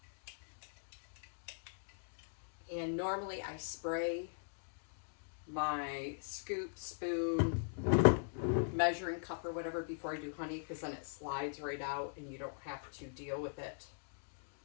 And normally I spray my scoop, spoon, measuring cup or whatever before I do honey, because then it slides right out and you don't have to deal with it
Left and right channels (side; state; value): right; silent; digital silence